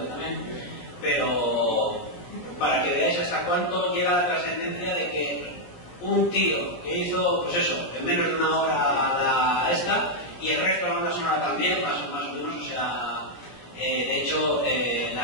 también, pero para que veáis hasta cuánto llega la trascendencia de que un tío que hizo, pues eso, en menos de una hora y el resto de la banda sonora también, más o menos, o sea, de hecho,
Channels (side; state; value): right; late; 17 ms